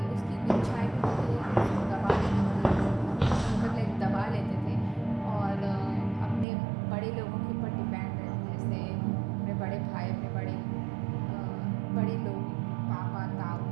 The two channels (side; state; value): left; drops out; at 6.5 s